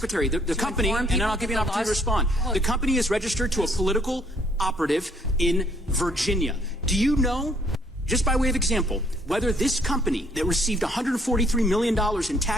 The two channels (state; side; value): normal; both; correlation 0.65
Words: the company, and then I'll give you an opportunity to respond. The company is registered to a political operative in Virginia. Do you know, just by way of example, whether this company that received $143 million in